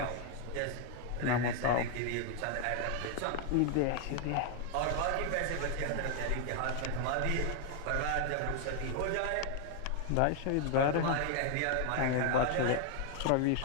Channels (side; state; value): both; different; correlation 0.00